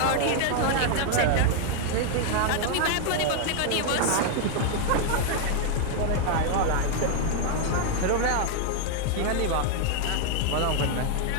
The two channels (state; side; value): different; both; correlation 0.00